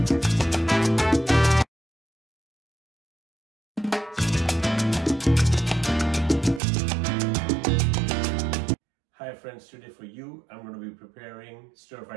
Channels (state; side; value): drops out; left; at 6.6 s